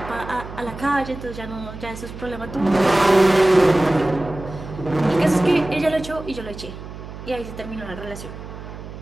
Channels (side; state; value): right; noise; hum, 12 dB below the sound